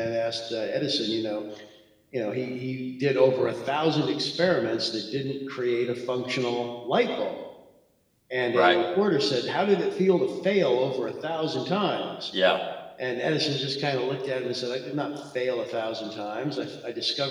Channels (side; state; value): both; identical; correlation 1.00